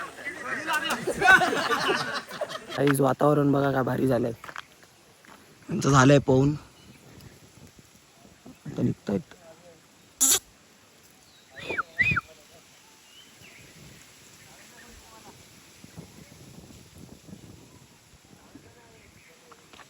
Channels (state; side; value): identical; both; correlation 1.00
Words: काहीच वातावरण बघा काय भारी झालंय. त्यांचं झालंय पोहून आता निघतायत.